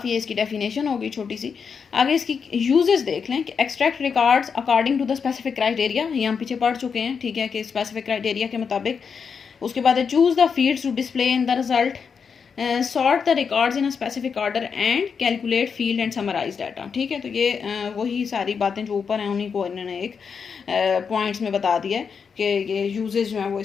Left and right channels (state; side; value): quieter; right; 6.1 dB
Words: है, इसकी डेफिनेशन होगी छोटी सी। आगे इसकी यूजेस देख लें कि extract records according to the specific criteria, ये हम पीछे पढ़ चुके हैं, ठीक है, कि स्पेसिफिक क्राइटेरिया के मुताबिक। उसके बाद choose the fields to display in the result, sort the records in a specific order and calculate field and summarize data, ठीक है। तो ये वही सारी बातें जो ऊपर हैं उन्हीं को इन्होंने एक पॉइंट्स में बता दिया है कि ये यूजेस जो हैं वो